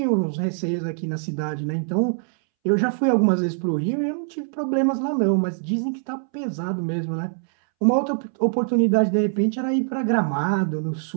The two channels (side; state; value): left; silent; 63 dB below the other